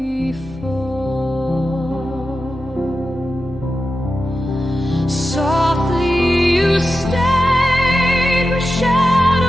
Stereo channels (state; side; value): normal; both; correlation 0.91